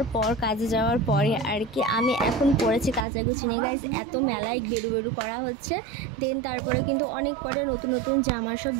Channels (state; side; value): drops out; left; at 3.1 s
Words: পর, কাজে যাওয়ার পরে আর কি আমি এখন পড়েছি কাচাকুচি নিয়ে। গাইজ এত মেলায় বেরু করা হচ্ছে, দেন তারপরে কিন্তু অনেক কটা নতুন নতুন জামা সব